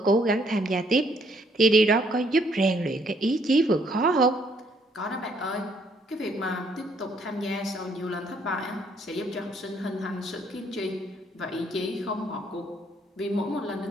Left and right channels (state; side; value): normal; both; correlation 0.67